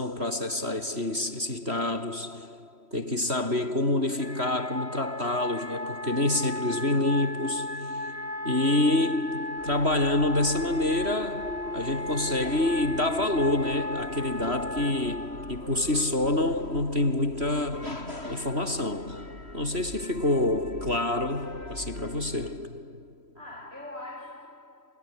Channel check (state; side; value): late; left; 3.1 ms